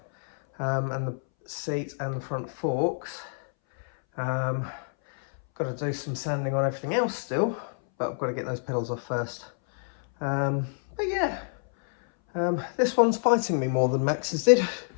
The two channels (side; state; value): right; silent; 60 dB below the other